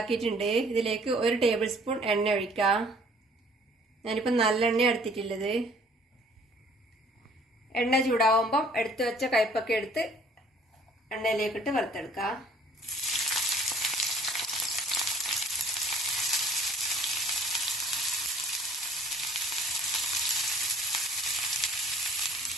ഇതിലേക്ക് 1 ടേബിൾ സ്പൂൺ എണ്ണ ഒഴിക്കാം. ഞാനിപ്പോൾ നല്ലെണ്ണ എടുത്തിട്ടുള്ളത്. എണ്ണ ചൂടാവുമ്പം എടുത്തു വെച്ച കൈപ്പക്ക എടുത്ത് എണ്ണയിലേക്കിട്ട് വറുത്തെടുക്കാം.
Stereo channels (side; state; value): both; normal; correlation 0.56